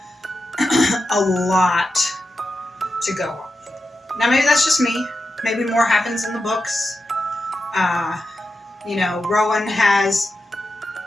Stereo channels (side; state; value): both; normal; correlation 0.89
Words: a lot to go on. Now, maybe that's just me. Maybe more happens in the books. Rowan has